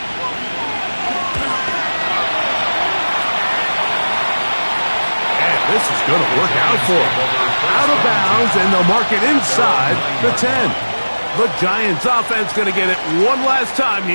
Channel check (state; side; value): inverted; both; correlation -1.00